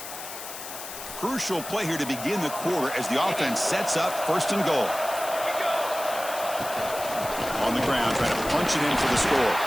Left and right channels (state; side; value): noise; left; hiss, 10 dB below the sound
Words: Crucial play here to begin the quarter as the offense sets up 1st and goal. On the ground, trying to punch it in for the score.